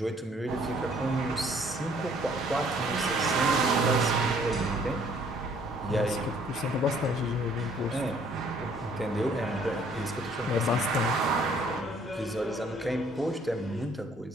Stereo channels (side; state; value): both; normal; correlation 0.61